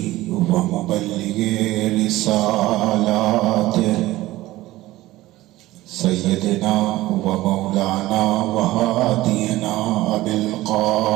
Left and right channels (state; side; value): quieter; left; 17.2 dB